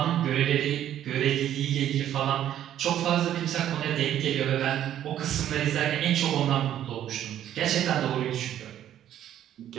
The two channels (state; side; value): quieter; left; 11.2 dB